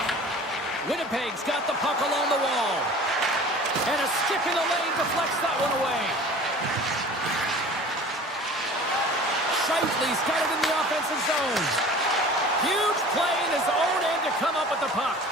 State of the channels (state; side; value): normal; both; correlation 0.43